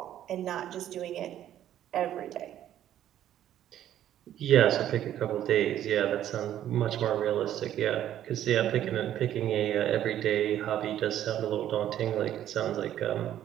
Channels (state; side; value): quieter; left; 11.5 dB